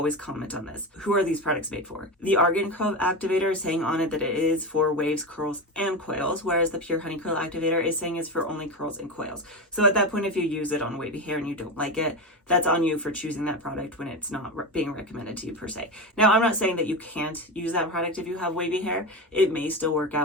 comment on this. Who are these products made for? The Argan Curl Activator is saying on it that it is for waves, curls, and coils, whereas the Pure Honey Curl Activator is saying it's for only curls and coils. So at that point, if you use it on wavy hair and you don't like it, that's on you for choosing that product when it's not being recommended to you per se. Now, I'm not saying that you can't use that product if you have wavy hair. It may still work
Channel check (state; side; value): normal; both; correlation 0.20